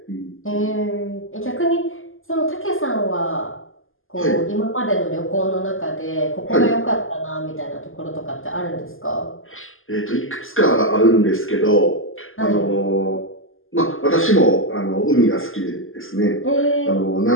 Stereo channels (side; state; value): right; late; 0.59 ms